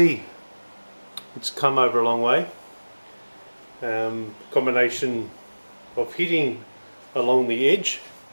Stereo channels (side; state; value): both; inverted; correlation -1.00